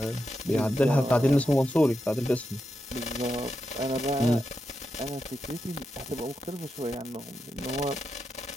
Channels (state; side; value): normal; both; correlation 0.87